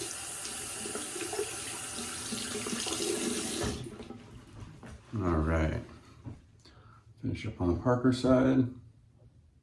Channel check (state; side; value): identical; both; correlation 1.00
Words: All right, finish up on the Parker side.